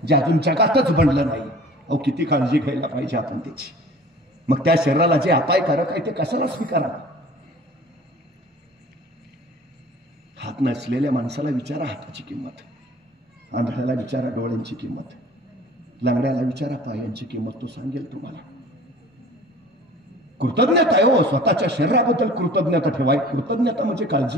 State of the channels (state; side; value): normal; both; correlation 0.46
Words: जे अजून जगातच बनलं नाही. अहो, किती काळजी घ्यायला पाहिजे आपण त्याची. मग त्या शरीराला जे अपायकारक आहे ते कशाला स्वीकारावं? हात नसलेल्या माणसाला विचारा हाताची किंमत, आंधळ्याला विचारा डोळ्यांची किंमत, लंगड्याला विचारा पायांची किंमत, तो सांगेल तुम्हाला. कृतज्ञता आहे हो, स्वतःच्या शरीराबद्दल कृतज्ञता ठेवाय. कृतज्ञता म्हणजे